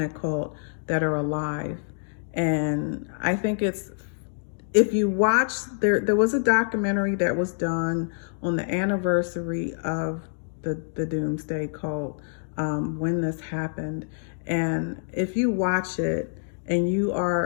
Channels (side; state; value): right; silent; digital silence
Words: cult that are alive. And I think if you watch, there was a documentary that was done on the anniversary of the doomsday cult, when this happened. And if you watch it, and you